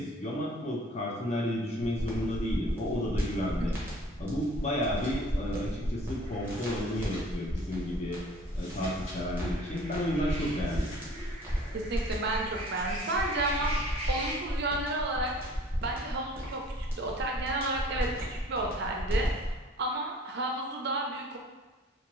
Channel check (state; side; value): normal; both; correlation 0.50